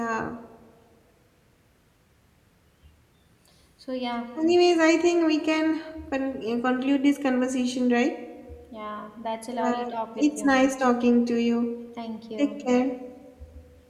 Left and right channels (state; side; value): identical; both; correlation 1.00